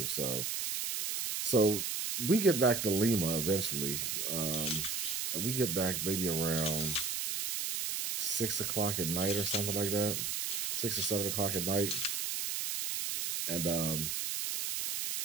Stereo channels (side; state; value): right; noise; hiss, 1 dB below the sound